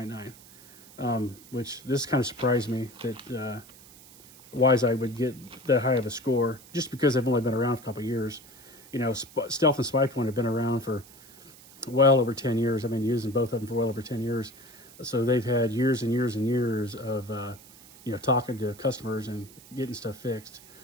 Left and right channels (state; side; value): noise; right; hiss, 22 dB below the sound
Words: Which this kind of surprised me that WiseEye would get that high of a score, just because they've only been around for a couple of years. You know, Stealth and Spypoint have been around for well over 10 years. I've been using both of them for well over 10 years. So they've had years and years and years of, you know, talking to customers and getting stuff fixed.